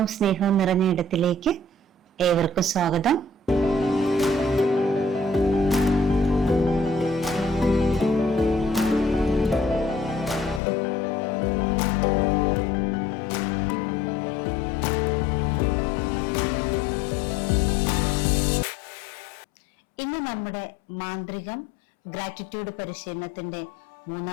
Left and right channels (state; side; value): drops out; right; at 10.6 s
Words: സ്നേഹവും നിറഞ്ഞ ഇടത്തിലേക്ക് ഏവർക്കും സ്വാഗതം. ഇന്ന് നമ്മുടെ മാന്ത്രികം ഗ്രാറ്റിറ്റ്യൂഡ് പരിശീലനത്തിന്റെ